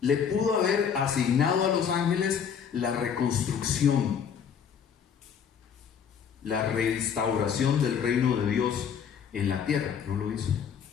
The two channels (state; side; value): quieter; right; 7.4 dB